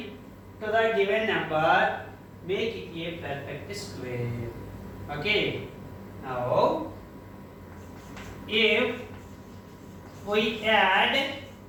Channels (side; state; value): both; identical; correlation 1.00